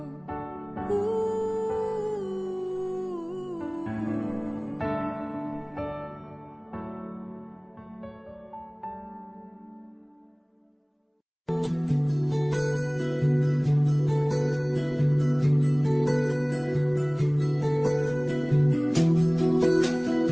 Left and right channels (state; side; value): identical; both; correlation 1.00